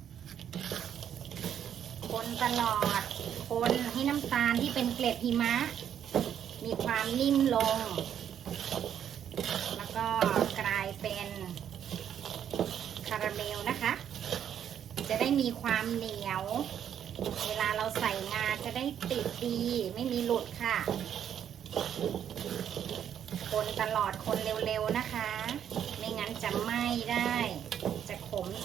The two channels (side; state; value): left; quieter; 9.3 dB